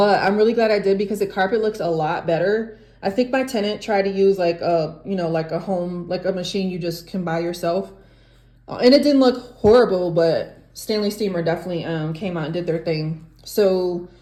I'm really glad I did because the carpet looks a lot better. I think my tenant tried to use like a machine you just can buy yourself. And it didn't look horrible, but Stanley steamer definitely came out and did their thing. So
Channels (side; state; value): both; identical; correlation 1.00